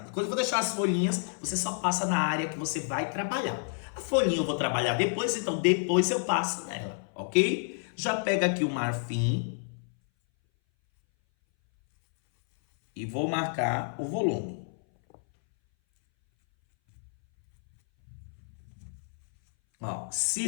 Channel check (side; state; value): right; silent; 58 dB below the other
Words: Quando eu vou deixar as folhinhas, você só passa na área que você vai trabalhar. A folhinha eu vou trabalhar depois, então depois eu passo nela, ok? Já pega aqui o marfim e vou marcar o volume. Ó,